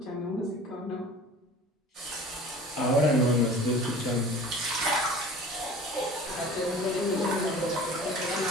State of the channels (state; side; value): normal; both; correlation 0.42